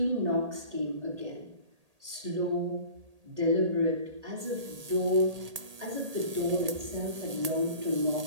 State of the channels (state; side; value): late; left; 1.8 ms